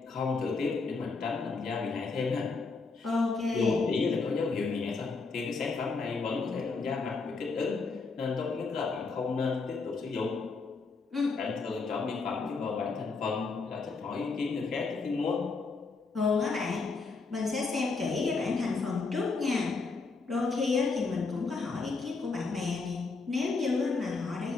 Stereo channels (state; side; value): quieter; right; 4.2 dB